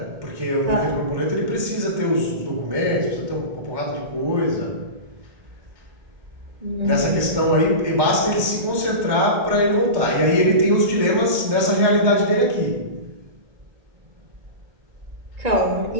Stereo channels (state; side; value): late; left; 1.2 ms